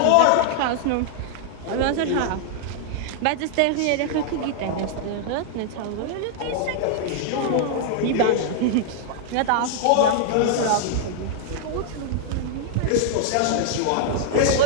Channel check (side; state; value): both; different; correlation -0.01